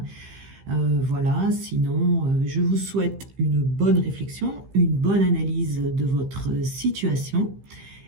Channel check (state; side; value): late; left; 15 ms